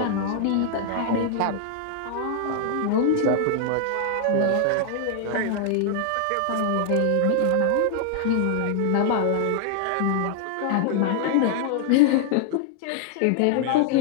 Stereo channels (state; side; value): different; both; correlation 0.00